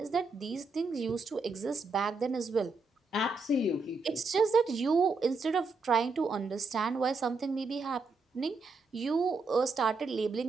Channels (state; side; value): quieter; left; 3.8 dB